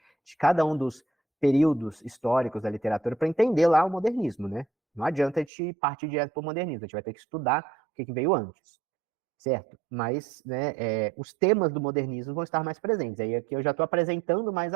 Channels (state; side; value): drops out; left; at 5.5 s